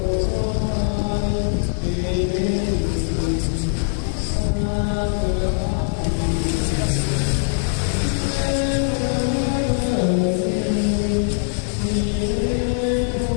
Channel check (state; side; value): silent; right; digital silence